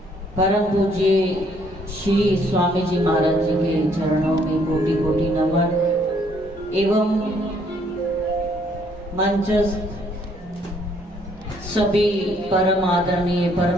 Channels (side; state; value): both; normal; correlation 0.66